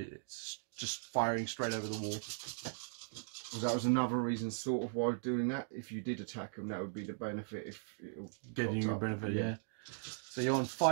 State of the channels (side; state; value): left; silent; digital silence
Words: just firing straight over the wall. Well, that was another reason, sort of, why doing that. If you did attack them, that would be the benefit. If it'll getting you a benefit, yeah. So you're on